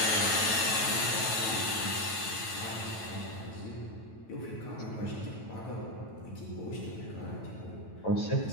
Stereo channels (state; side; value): late; right; 9.1 ms